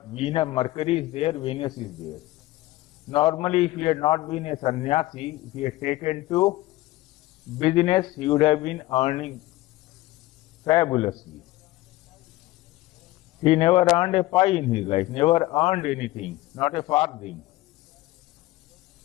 Mercury is there, Venus is there. Normally, if he had not been a sannyasi, if he had taken to business, he would have been earning fabulously. He never earned a pie in his life, never earned anything, not a farthing.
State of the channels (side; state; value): right; quieter; 17.9 dB